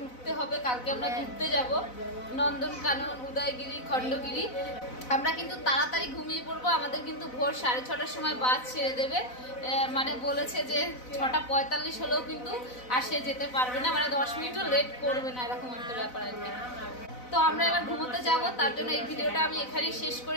উঠতে হবে, কালকে আমরা ঘুরতে যাব নন্দনকানন, উদয়গিরি, খণ্ডগিরি। আমরা কিন্তু তাড়াতাড়ি ঘুমিয়ে পড়বো, আমাদের কিন্তু ভোর 6:30টার সময় বাস ছেড়ে দেবে। মানে বলেছে যে 6:45 হলেও কিন্তু আর সে যেতে পারবে না, মানে 10 মিনিটও লেট করবে না, এরকম একটা ব্যাপার আর কি। তো আমরা এবার ঘুমোতে যাব, তার জন্য এই ভিডিওটা আমি এখানেই শেষ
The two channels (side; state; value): right; late; 4.0 ms